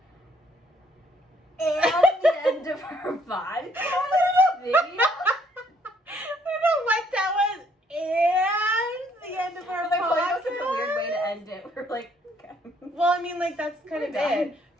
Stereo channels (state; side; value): normal; both; correlation 0.67